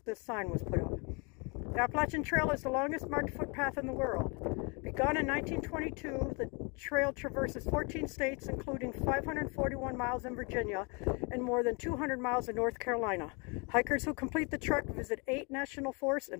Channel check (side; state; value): right; quieter; 31.7 dB